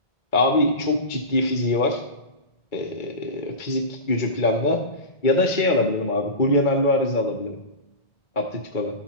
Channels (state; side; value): late; right; 2.2 ms